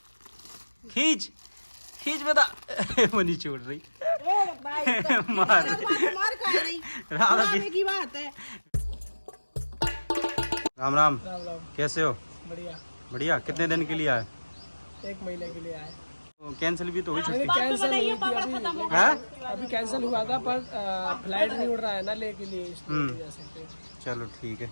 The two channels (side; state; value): both; inverted; correlation -1.00